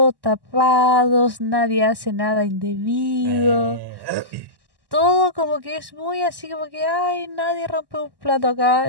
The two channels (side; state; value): left; late; 1.1 ms